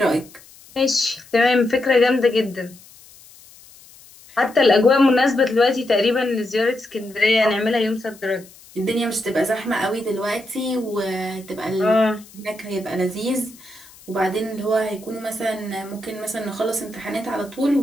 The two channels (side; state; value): left; noise; hiss, 23 dB below the sound